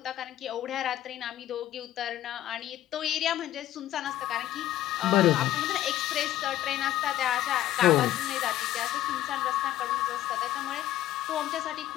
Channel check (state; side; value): quieter; right; 13.3 dB